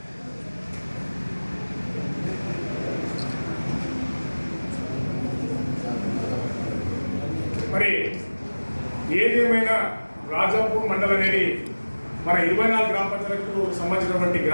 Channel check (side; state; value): both; inverted; correlation -1.00